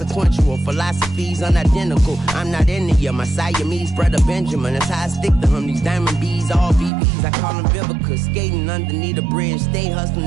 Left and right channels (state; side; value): drops out; left; at 6.9 s